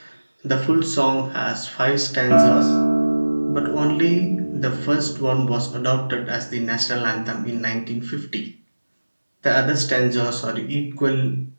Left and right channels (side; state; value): both; inverted; correlation -1.00